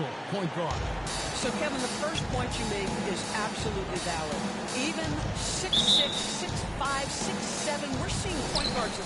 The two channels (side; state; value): both; identical; correlation 1.00